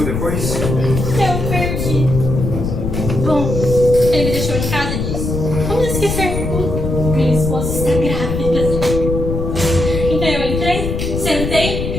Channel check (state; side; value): noise; left; rumble, 3 dB below the sound